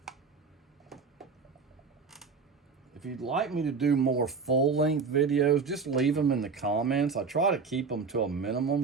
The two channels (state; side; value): quieter; left; 5.0 dB